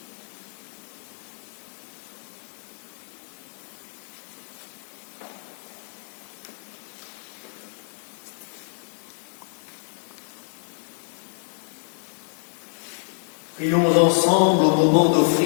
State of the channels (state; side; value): silent; right; 60 dB below the other